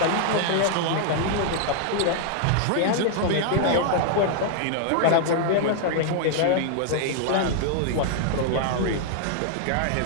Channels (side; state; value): both; different; correlation -0.01